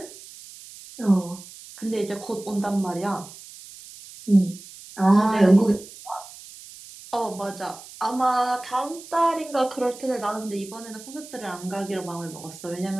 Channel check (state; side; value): noise; right; hiss, 17 dB below the sound